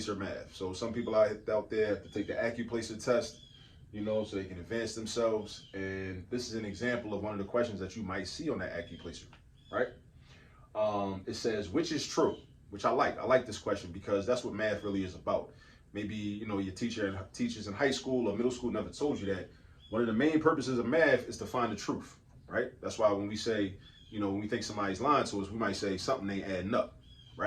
math. So some people out there have to take the Accuplacer test, so they can advance themselves. And this is an example of one of the questions that you might see on that Accuplacer, right? It says, which is true? Which I like. I like this question because that's what math really is about. Maybe, your teachers in high school or middle school never told you that one of the main purposes of math is to find the truth. Right? That's why when we say, when we think somebody's lying to us, we might say something ain't adding up,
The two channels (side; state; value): both; identical; correlation 1.00